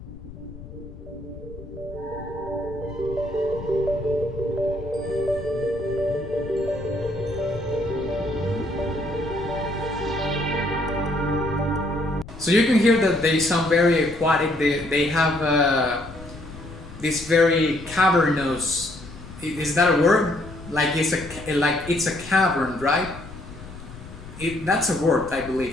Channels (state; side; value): noise; left; rumble, 15 dB below the sound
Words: So you can hear that they sound very aquatic. They have this very cavernous. Is that a word? Like it's a cavern, right? That's a word, I